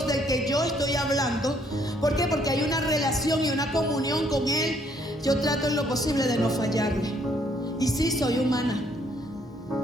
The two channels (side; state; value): both; normal; correlation 0.67